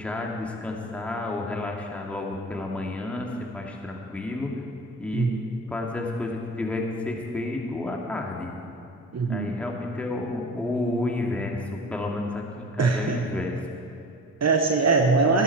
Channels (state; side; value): normal; both; correlation 0.35